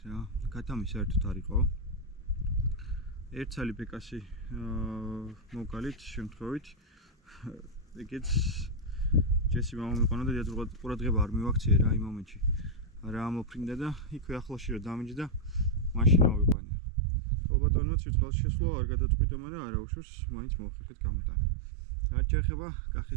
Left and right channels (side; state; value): left; drops out; at 16.6 s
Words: რა. ქათამი საერთოდ არ იყო. ერთ ცალი ბეკასი მოვგალით შემთხვევით. ეგეც ჯესი მამა მიყონა და ყურადღება არ მივაქციე რა იმ მომენტში. რა ამოფრინდა და იქვე ახლოში რომ დამიჯდა, მაშინ ავიყვანე. ალბათონაც სიწყალში შესვლა არ გადაწყვიტა, მაგრამ არა უშავს, მაინც მოვხერხეთ გამოტანა. რაც შეეხება